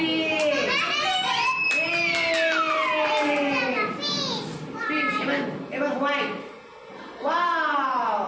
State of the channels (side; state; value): both; identical; correlation 1.00